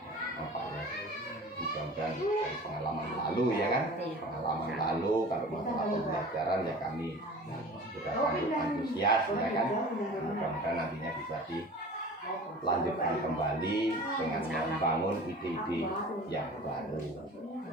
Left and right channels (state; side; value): normal; both; correlation 0.40